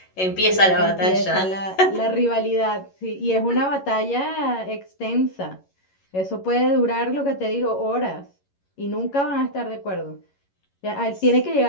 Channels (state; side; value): late; right; 11 ms